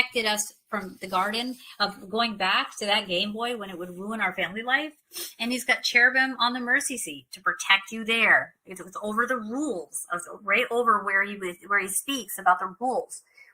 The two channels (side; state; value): both; identical; correlation 1.00